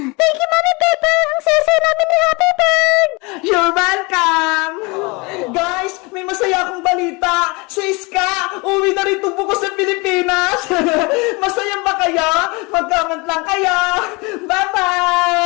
Thank you, Mami Bebang! Ang saya namin ni Happy Bird! You're welcome! Guys, may masaya akong balita. Si Iska, uwi na rin tubo ko sa Pilipinas. Masaya ba kayo? Mag-comment lang kayo.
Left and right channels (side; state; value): right; quieter; 27.4 dB